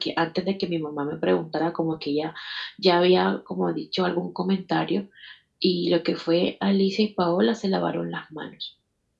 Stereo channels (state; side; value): identical; both; correlation 1.00